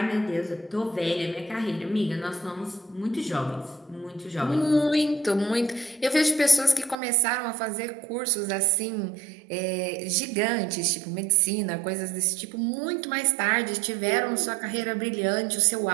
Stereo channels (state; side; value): drops out; left; at 7.0 s